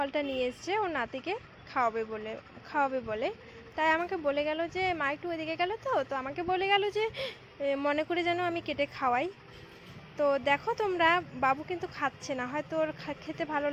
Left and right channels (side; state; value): both; identical; correlation 1.00